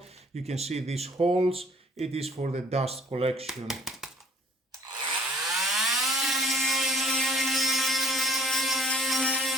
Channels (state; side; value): normal; both; correlation 0.55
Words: You can see these holes. It is for the dust collection.